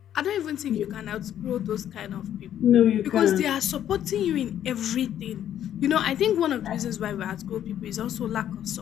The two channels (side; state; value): right; quieter; 10.7 dB